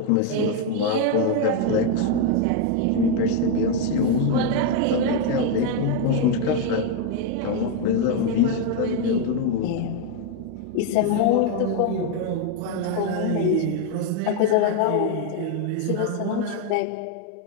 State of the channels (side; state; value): both; different; correlation 0.01